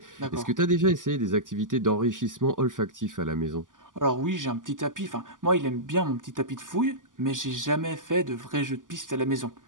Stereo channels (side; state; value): left; late; 0.88 ms